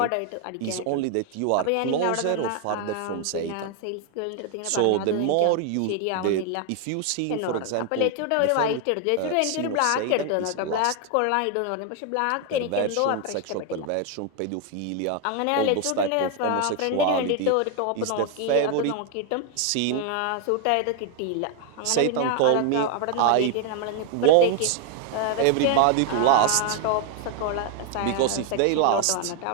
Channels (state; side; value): different; both; correlation 0.01